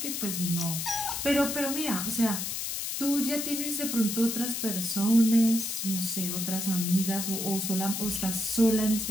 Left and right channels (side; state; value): left; noise; hiss, 3 dB below the sound